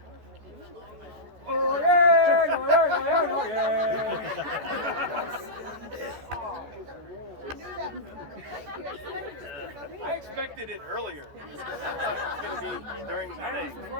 Oh yeah, oh yeah, oh yeah, I expected it earlier. I thought it was going to be during the thing.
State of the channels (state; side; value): late; left; 14 ms